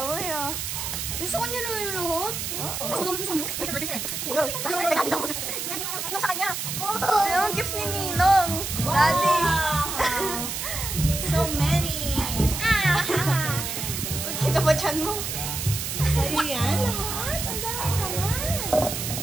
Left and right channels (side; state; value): right; noise; hiss, 4 dB below the sound